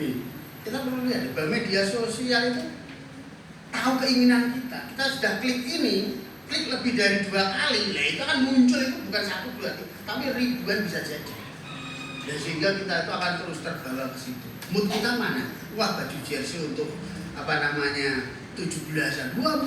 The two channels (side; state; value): both; identical; correlation 1.00